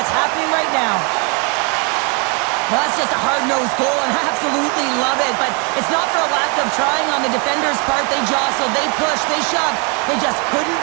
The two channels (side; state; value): left; quieter; 34.5 dB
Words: happening right now. Well, that's just a hard-nosed goal, and I absolutely love it, but it's not for a lack of trying on the defender's part. They jostled, they pushed, they shoved. They just